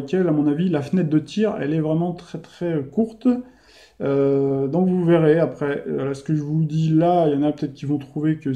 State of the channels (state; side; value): identical; both; correlation 1.00